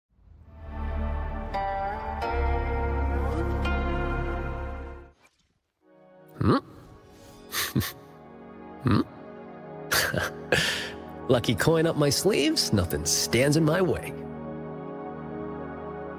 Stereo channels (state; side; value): identical; both; correlation 1.00